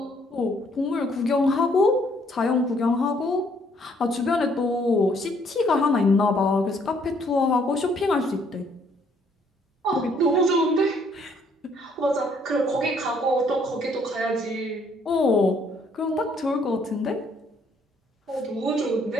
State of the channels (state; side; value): normal; both; correlation 0.66